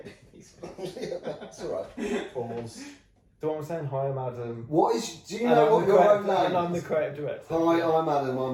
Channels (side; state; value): both; identical; correlation 1.00